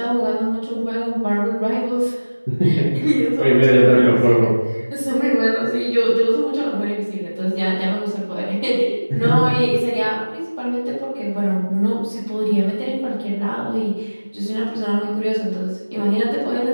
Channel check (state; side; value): inverted; both; correlation -1.00